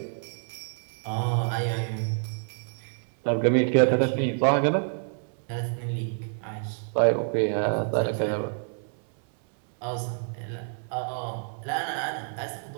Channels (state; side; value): silent; left; 60 dB below the other